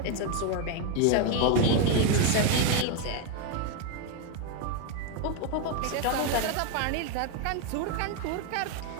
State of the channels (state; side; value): different; both; correlation 0.02